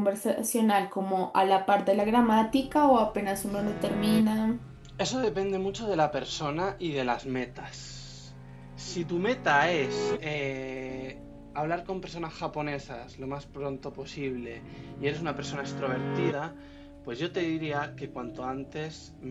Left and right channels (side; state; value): both; identical; correlation 1.00